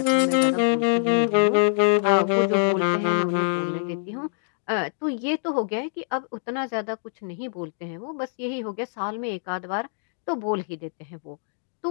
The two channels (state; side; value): silent; right; digital silence